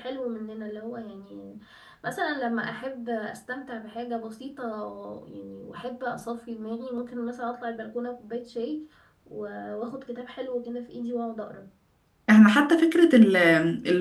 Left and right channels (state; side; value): identical; both; correlation 1.00